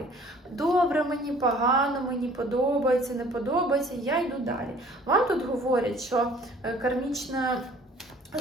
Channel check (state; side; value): normal; both; correlation 0.53